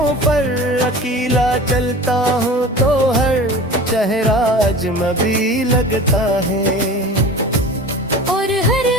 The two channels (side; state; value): both; normal; correlation 0.37